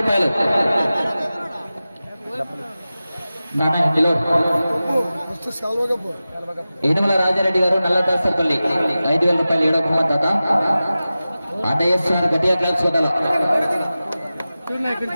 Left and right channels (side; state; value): both; inverted; correlation -0.95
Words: రూపాయలు. ఏనుగుల రాజారెడ్డి గారు, నల్ల దాసరపల్లి 5,000 రూపాయలు. 7వ బహుమతి దాత అన్నయ్యేస్తున్నారు. గట్టిగా క్లాప్స్ కొట్టాల.